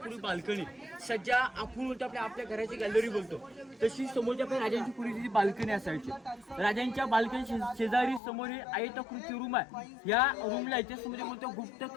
बाल्कनी, सज्जा आपण बोलतो आपल्या घराची गॅलरी बोलतो, तशी समोरच्या आपल्या राजांची पूर्वीची बाल्कनी असायची. राजांच्या बाल्कनी शेजारी समोर हे आयताकृती रूम आहे. या रूमला इतिहासामध्ये बोलतो गुप्त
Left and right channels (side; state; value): right; drops out; at 8.2 s